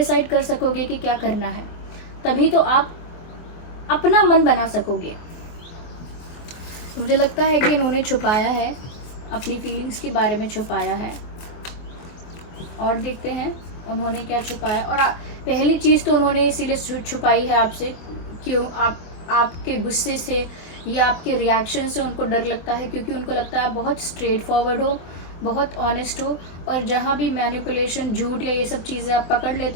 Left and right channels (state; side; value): late; right; 24 ms